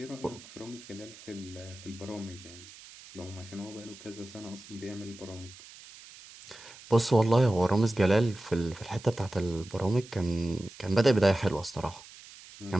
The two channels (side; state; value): right; noise; hiss, 19 dB below the sound